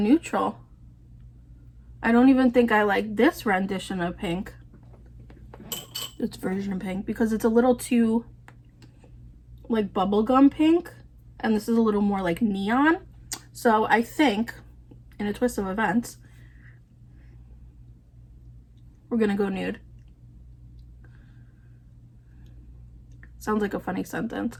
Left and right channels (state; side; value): identical; both; correlation 1.00